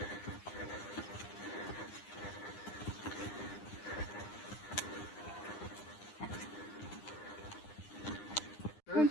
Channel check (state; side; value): late; right; 9.8 ms